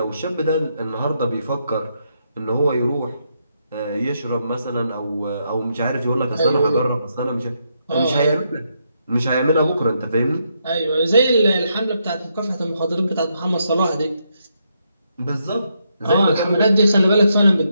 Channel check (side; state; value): both; inverted; correlation -0.79